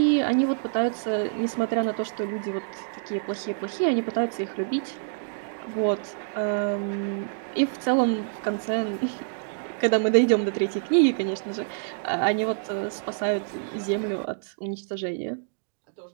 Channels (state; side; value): silent; left; digital silence